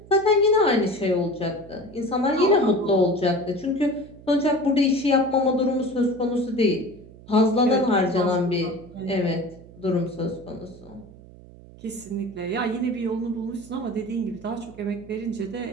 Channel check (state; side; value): noise; right; hum, 20 dB below the sound